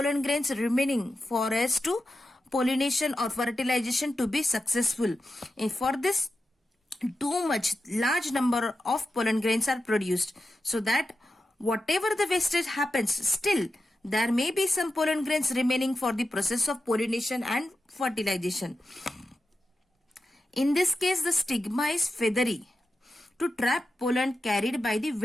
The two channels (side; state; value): both; normal; correlation 0.90